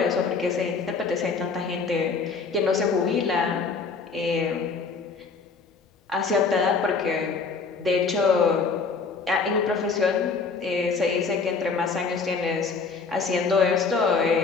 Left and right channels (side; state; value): right; quieter; 4.8 dB